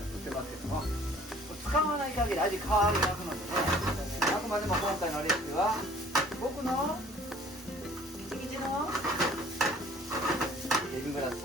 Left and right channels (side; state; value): both; normal; correlation 0.53